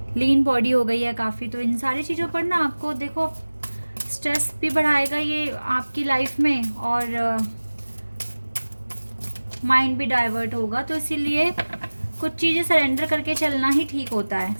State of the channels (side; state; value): both; inverted; correlation -1.00